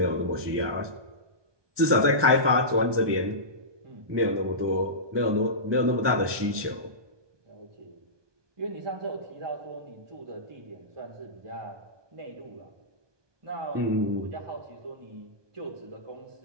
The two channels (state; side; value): late; left; 1.2 ms